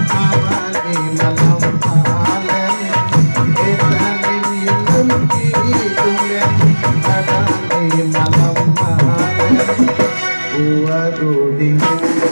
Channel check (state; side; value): inverted; both; correlation -1.00